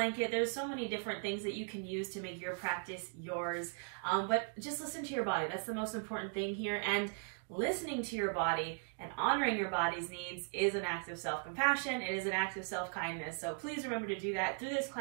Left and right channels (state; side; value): silent; left; 52 dB below the other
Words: There's so many different things that you can use to make your practice yours. But just listen to your body. That's the most important thing here. And listening to your body and honoring your body's needs is an act of self-compassion. It is an act of self-kindness. So please remember to do that through this